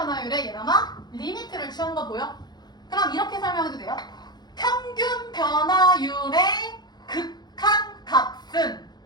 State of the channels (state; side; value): late; right; 0.20 ms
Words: 얘랑아 리미트를 취한 거 보여? 그럼 이렇게 설명해도 돼요. 평균 변화율의 극한 값은